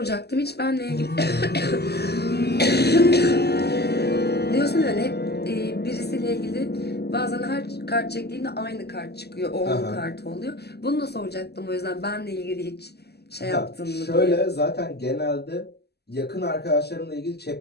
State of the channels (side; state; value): right; late; 0.47 ms